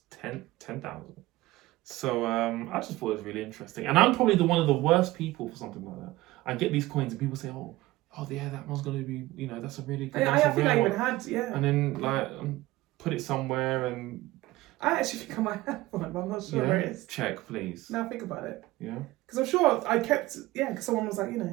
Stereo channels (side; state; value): left; quieter; 18.2 dB